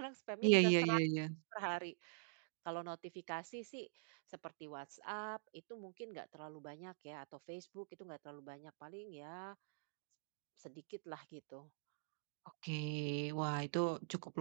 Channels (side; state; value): left; silent; digital silence